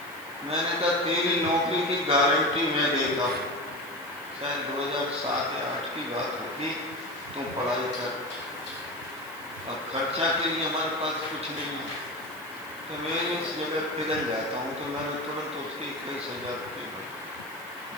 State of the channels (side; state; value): right; noise; hiss, 19 dB below the sound